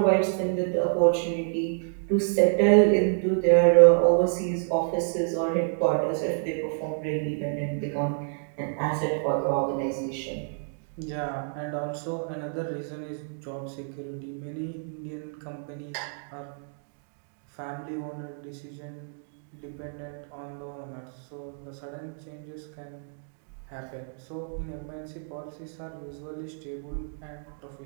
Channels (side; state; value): left; silent; digital silence